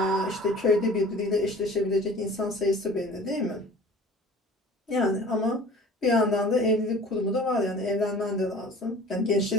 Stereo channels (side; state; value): both; normal; correlation 0.45